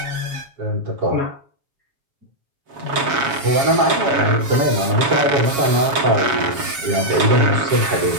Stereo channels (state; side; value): late; left; 7.2 ms